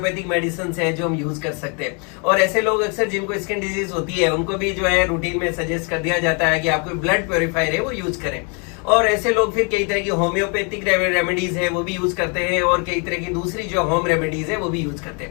मेडिसिन है जो हम यूज कर सकते हैं। और ऐसे लोग अक्सर जिनको स्किन डिजीज होती है उनको भी जो है रूटीन में सजेस्ट कर दिया जाता है कि आप कोई ब्लड प्योरीफायर है वो यूज करें। और ऐसे लोग फिर कई तरह की होम्योपैथिक रेमेडीज है वो भी यूज करते हैं और कई तरह की दूसरी जो होम रेमेडीज है वो भी यूज करते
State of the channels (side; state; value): right; quieter; 35.6 dB